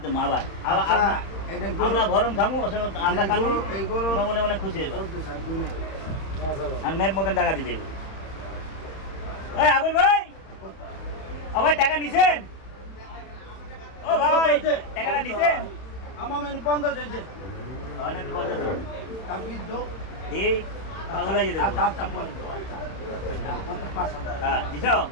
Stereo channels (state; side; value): late; right; 31 ms